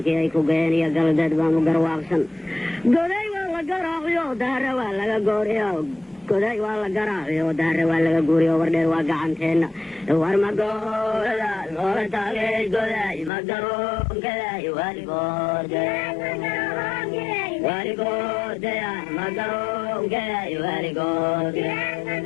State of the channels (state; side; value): drops out; right; at 13.3 s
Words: ايكو قين يا قلدت بانو قرواقسن قدي والله قراغيو دار والله قوريو قدي والله قراغيو دار والله قوريو وردي واقعانتين ورما قولا لولا تاقي قدي مقرون كدي والقود والقود يا مقرون كدي والقود